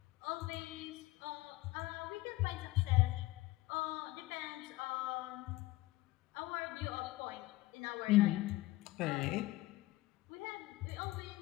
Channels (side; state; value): right; quieter; 18.6 dB